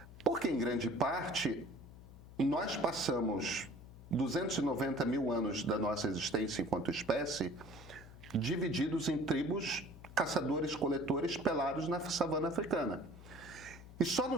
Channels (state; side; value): noise; left; hum, 17 dB below the sound